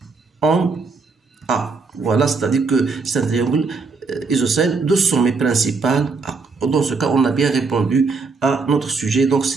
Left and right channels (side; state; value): left; quieter; 4.4 dB